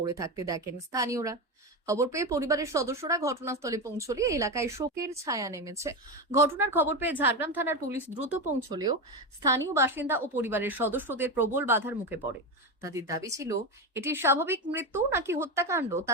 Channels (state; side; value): normal; both; correlation 0.15